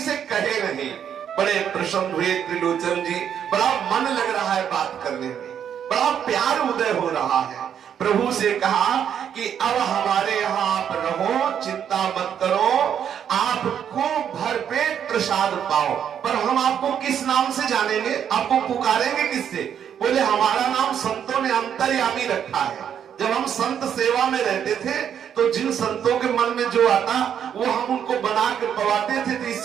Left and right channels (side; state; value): left; quieter; 8.7 dB